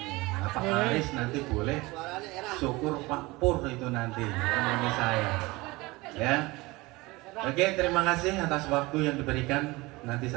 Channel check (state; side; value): quieter; left; 22.2 dB